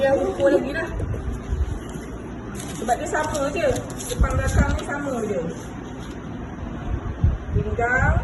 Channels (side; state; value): both; identical; correlation 1.00